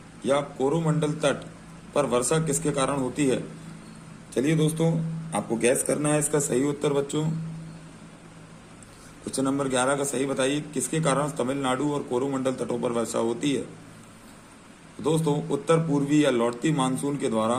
या कोरोमंडल तट पर वर्षा किसके कारण होती है? चलिए दोस्तों, आपको गैस करना है इसका सही उत्तर बच्चों। क्वेश्चन नंबर 11 का सही बताइए, किसके कारण तमिलनाडु और कोरोमंडल तटों पर वर्षा होती है? दोस्तों, उत्तर पूर्वी या लौटती मानसून के द्वारा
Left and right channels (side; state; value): both; identical; correlation 1.00